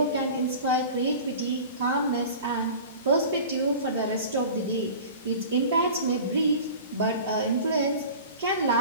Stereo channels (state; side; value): inverted; both; correlation -0.38